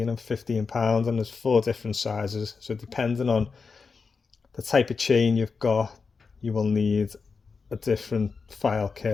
and £15, and there's 4 different sizes. So depending on the type of chain you've got, you will need a different file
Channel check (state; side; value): quieter; right; 4.9 dB